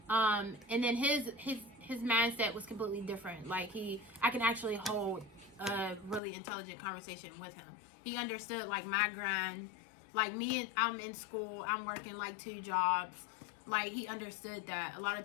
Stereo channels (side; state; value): right; drops out; at 6.2 s